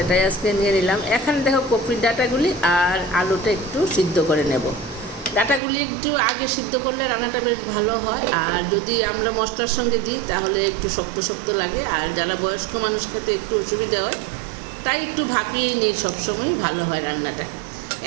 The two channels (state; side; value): drops out; left; at 5.6 s